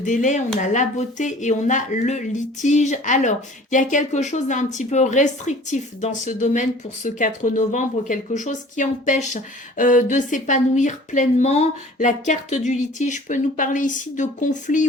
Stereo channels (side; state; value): both; normal; correlation 0.48